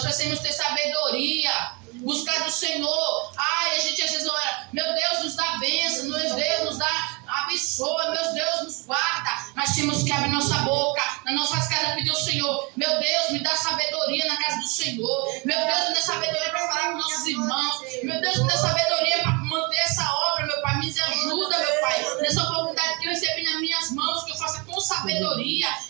precisamos ter sabedoria. Buscar do Senhor. Ai, a gente às vezes ora, meu Deus nos dá bênção, meu Deus nos dá abençoa, meu Deus nos guarda. Mas temos que abrir nossa boca, nas nossas casas pedir ao Senhor, meu Deus me dá sabedoria na casa do Senhor, meu Deus me dá sabedoria para falar com nossos irmãos, meu Deus me dá sabedoria para manter essa obra, meu Pai, me ajuda, meu Pai, nessa oportunidade que eu recebi nas minhas mãos, que eu faça com sabedoria,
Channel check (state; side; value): quieter; left; 29.9 dB